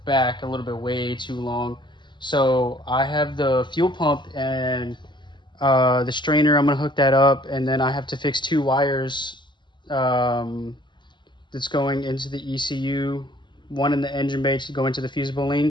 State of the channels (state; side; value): late; right; 0.22 ms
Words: back a little bit way too long. So I have the fuel pump and the strainer. I'm going to hook that up, and then I have to fix 2 wires that's going into the ECU. One in the engine bay to go into the fusible